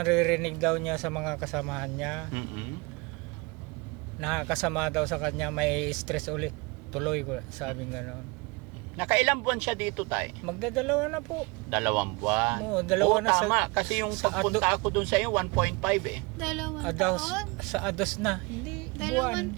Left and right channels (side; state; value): left; quieter; 27.1 dB